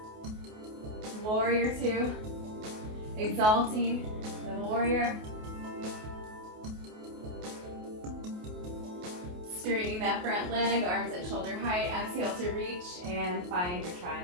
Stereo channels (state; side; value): late; left; 28 ms